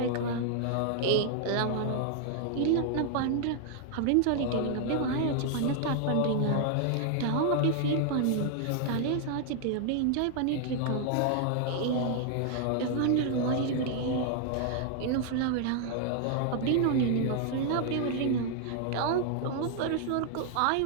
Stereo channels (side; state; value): both; different; correlation 0.00